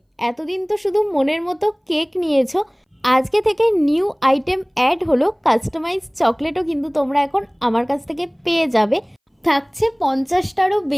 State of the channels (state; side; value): identical; both; correlation 1.00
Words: এতদিন তো শুধু মনের মতো কেক নিয়েছো, আজকে থেকে নিউ আইটেম অ্যাড হলো, কাস্টমাইজ চকলেটও কিন্তু তোমরা এখন আমার কাছ থেকে পেয়ে যাবে। থাকছে 50টারও